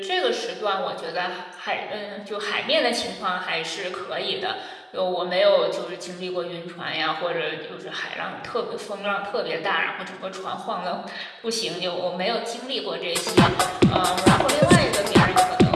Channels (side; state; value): both; identical; correlation 1.00